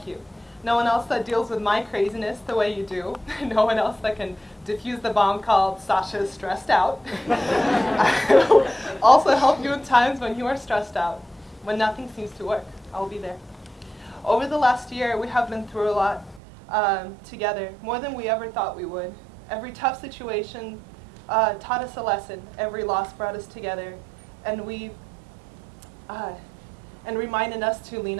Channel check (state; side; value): drops out; left; at 16.4 s